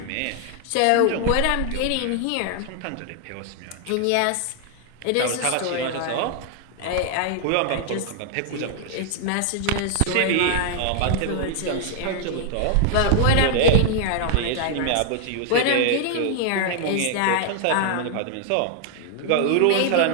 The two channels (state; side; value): different; both; correlation 0.00